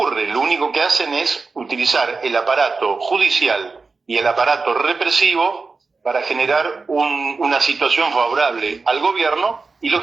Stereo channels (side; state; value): left; quieter; 4.2 dB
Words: Lo único que hacen es utilizar el aparato judicial y el aparato represivo para generar una situación favorable al gobierno y,